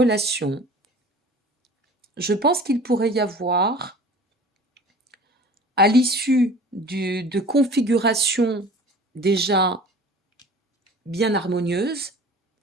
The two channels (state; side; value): normal; both; correlation 0.44